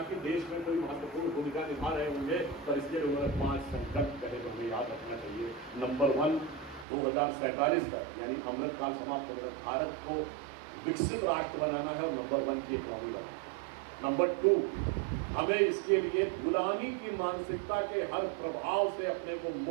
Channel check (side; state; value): left; drops out; at 6.9 s